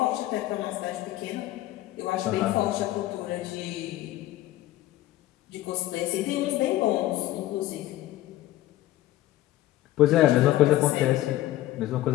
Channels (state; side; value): quieter; right; 15.1 dB